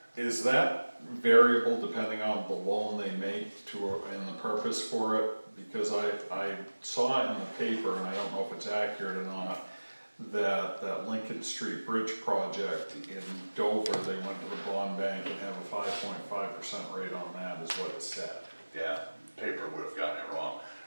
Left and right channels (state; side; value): inverted; both; correlation -1.00